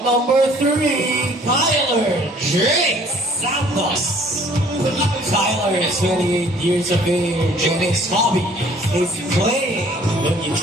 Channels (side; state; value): both; normal; correlation 0.56